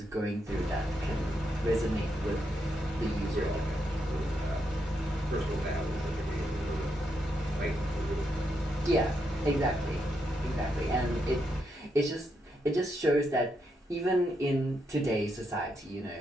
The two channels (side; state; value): both; normal; correlation 0.81